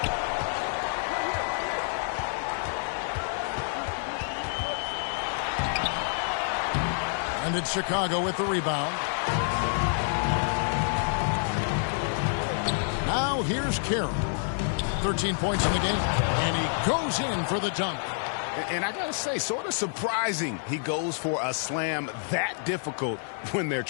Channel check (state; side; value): silent; right; 59 dB below the other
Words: And it's Chicago with the rebound. Now here's Carroll. 13 points in the game. And he goes in for the dunk. And I got to say, sort of surprising he goes for a slam that difficult when they're